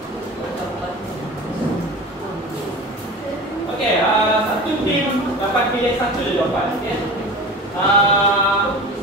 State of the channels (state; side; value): normal; both; correlation 0.34